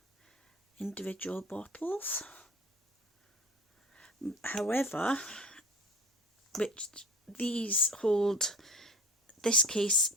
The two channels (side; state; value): both; normal; correlation 0.40